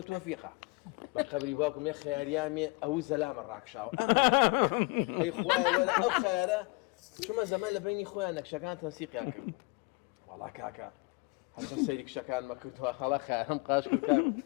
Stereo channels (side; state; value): right; quieter; 28.3 dB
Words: تۆفیقە بە قەبری باوکم یە خەیاریامێ ئەو زەلامە ڕاکشاوە ئەمە ئەی خوایە وەرە ئەو خەیارە چوومە زەمان لە بینی خۆیان نەکشەکان تەنسیقیان کردبوو وەڵا کاکە هەرچەند سەیری کشەکانمە کردووە هەڵا خەیارم قاش کرد کاک